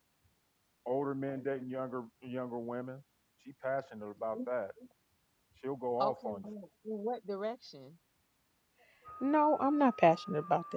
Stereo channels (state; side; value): identical; both; correlation 1.00